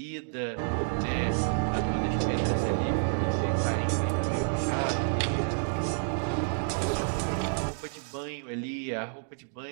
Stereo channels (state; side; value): silent; left; digital silence